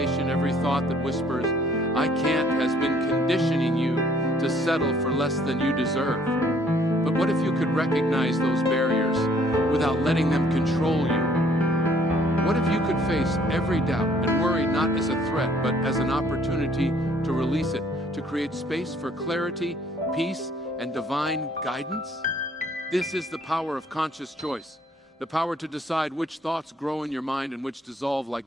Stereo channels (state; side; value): normal; both; correlation 0.61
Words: every thought that whispers, "I can't," has been conditioning you to settle for less than you deserve. But what if you could recognize those barriers without letting them control you? What if you could face every doubt and worry not as a threat, but as an opportunity to release it, to create space for clarity, peace, and divine guidance? This is the power of conscious choice, the power to decide which thoughts grow in your mind and which dissolve